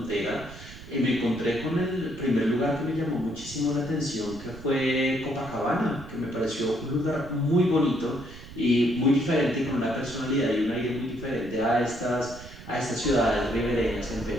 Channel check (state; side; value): noise; right; rumble, 15 dB below the sound